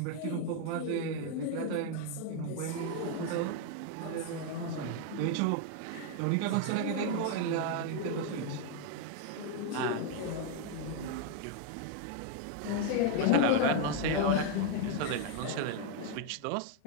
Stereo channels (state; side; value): different; both; correlation 0.01